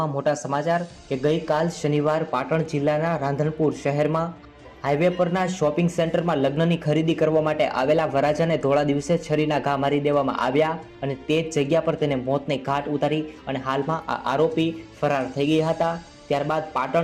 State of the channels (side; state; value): both; identical; correlation 1.00